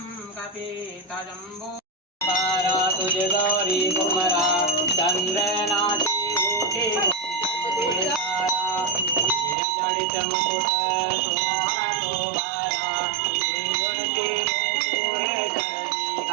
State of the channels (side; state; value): left; drops out; at 9.6 s